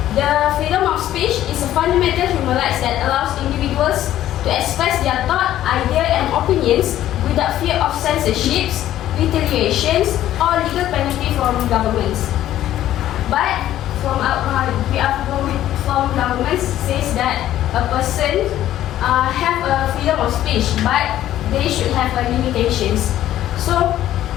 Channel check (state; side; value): quieter; right; 12.8 dB